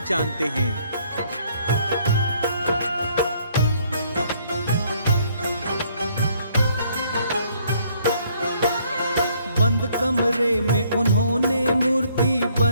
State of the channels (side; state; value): both; inverted; correlation -0.65